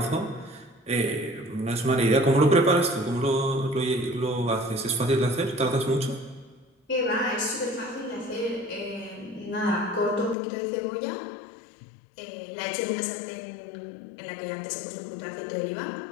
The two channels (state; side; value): drops out; right; at 10.4 s